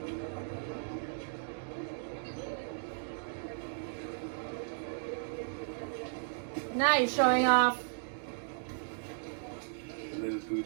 Nice showing off. Little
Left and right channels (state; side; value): silent; left; digital silence